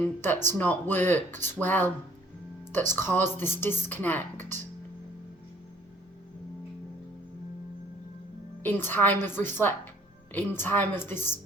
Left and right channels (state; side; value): normal; both; correlation 0.58